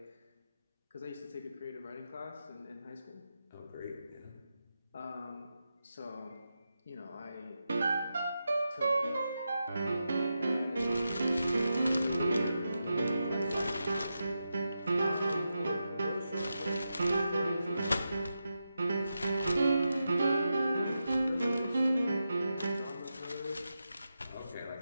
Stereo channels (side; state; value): both; inverted; correlation -0.88